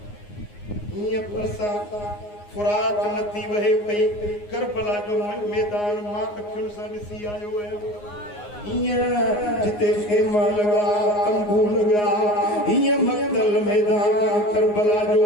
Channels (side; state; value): right; late; 9.6 ms